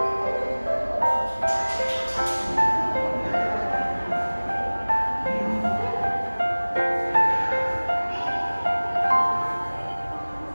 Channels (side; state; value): both; inverted; correlation -1.00